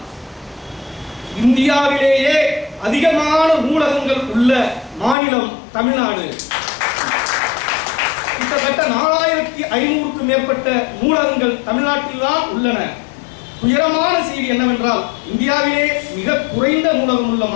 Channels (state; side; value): drops out; right; at 5.2 s